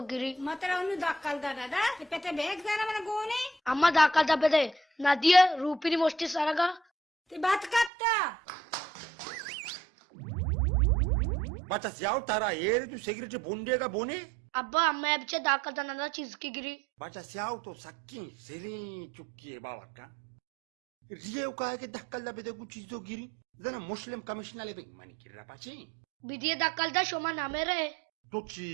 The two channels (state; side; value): drops out; left; at 7.9 s